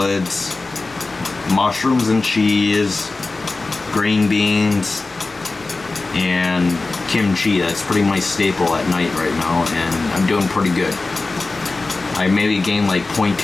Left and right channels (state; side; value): quieter; right; 3.5 dB